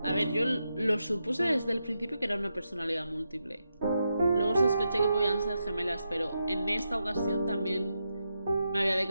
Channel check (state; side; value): inverted; both; correlation -0.85